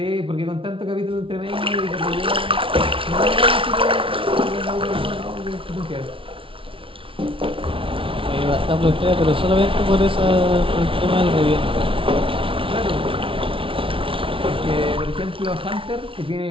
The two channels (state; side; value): late; left; 0.25 ms